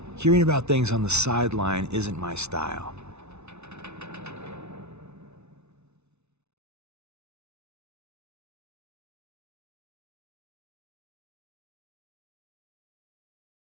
Hearing about things on the sideline isn't my style.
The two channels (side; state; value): left; late; 0.81 ms